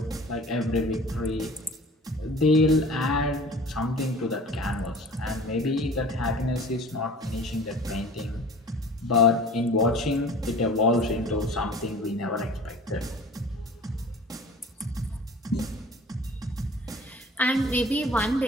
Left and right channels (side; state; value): both; normal; correlation 0.44